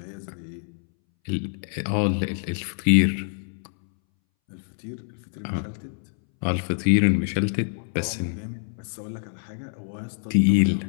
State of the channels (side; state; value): right; silent; 61 dB below the other